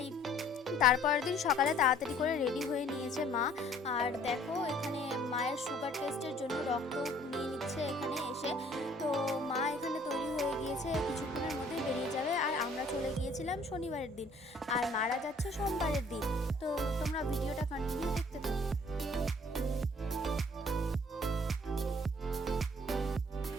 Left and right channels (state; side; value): normal; both; correlation 0.57